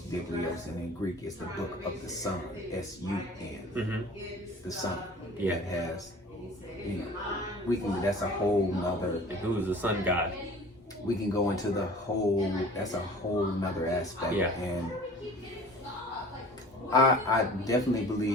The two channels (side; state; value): both; normal; correlation 0.44